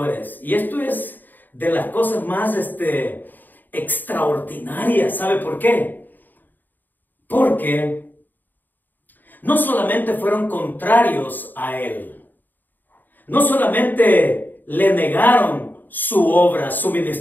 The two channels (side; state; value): right; late; 0.089 ms